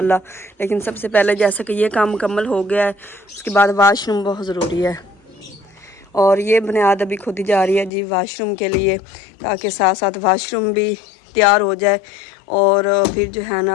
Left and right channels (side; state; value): right; drops out; at 7.9 s